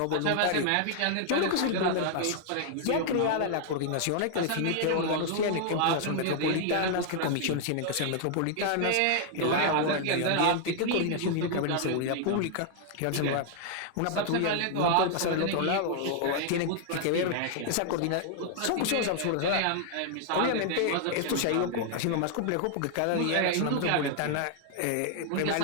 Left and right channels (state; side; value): different; both; correlation 0.00